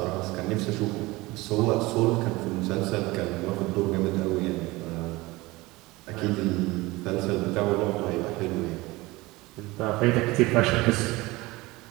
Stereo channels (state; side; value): quieter; left; 21.2 dB